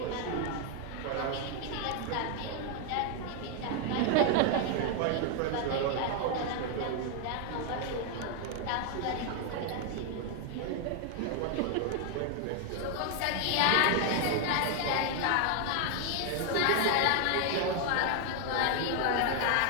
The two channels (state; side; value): different; both; correlation 0.00